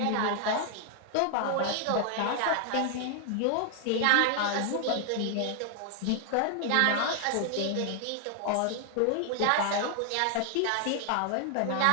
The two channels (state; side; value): different; both; correlation 0.00